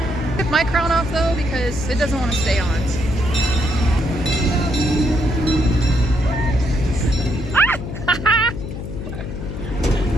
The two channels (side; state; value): left; noise; hum, 7 dB below the sound